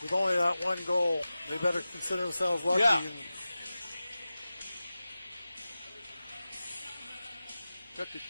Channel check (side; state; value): both; inverted; correlation -0.95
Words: with only that one goal, they better consider themselves lucky. Yeah. And got the